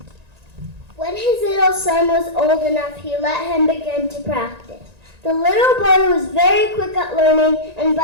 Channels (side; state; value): left; late; 1.9 ms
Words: When his little son was old enough, he let him begin to practice. The little boy was very quick at learning, and